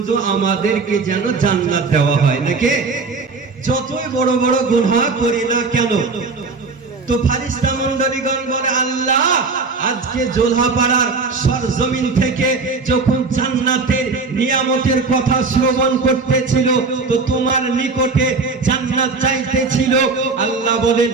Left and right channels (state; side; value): quieter; left; 4.2 dB